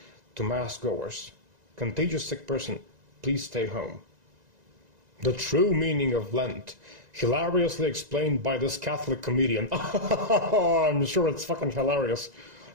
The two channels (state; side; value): late; left; 1.9 ms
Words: to mass goers. Contagious sick person, please stay home. The true meaning of Lent, hilariously explained by this Catholic comedian. I'm sure it's fucking hilarious.